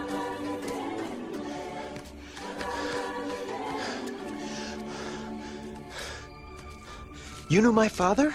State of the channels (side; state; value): both; identical; correlation 1.00